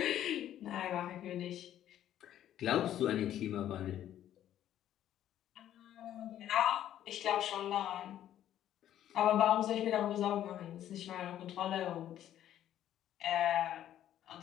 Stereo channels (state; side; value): quieter; right; 11.5 dB